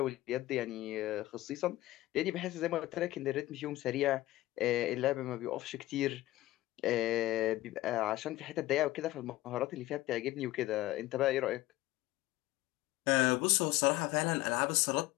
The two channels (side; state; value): right; quieter; 16.9 dB